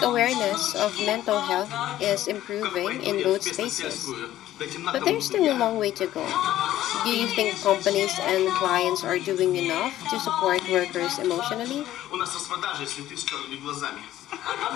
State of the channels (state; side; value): quieter; right; 13.6 dB